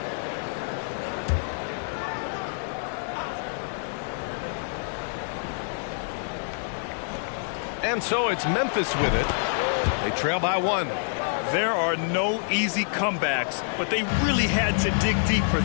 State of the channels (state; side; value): silent; right; 60 dB below the other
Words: And so it's Memphis with it. They trail by 1. There are no easy comebacks, but they really had to dig deep for